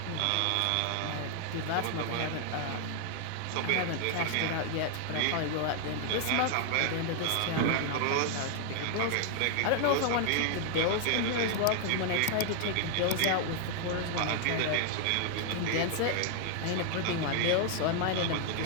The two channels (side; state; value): both; different; correlation 0.00